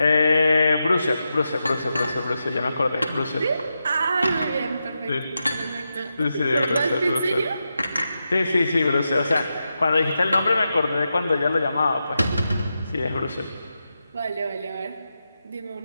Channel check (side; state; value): both; inverted; correlation -0.88